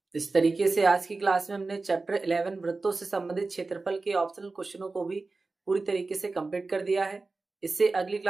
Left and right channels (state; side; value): quieter; left; 3.7 dB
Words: इस तरीके से आज की क्लास में हमने चैप्टर 11 वृत्तों से संबंधित क्षेत्रफल के ऑप्शनल क्वेश्चनों को भी पूरी तरीके से कंप्लीट कर दिया है। इससे अगली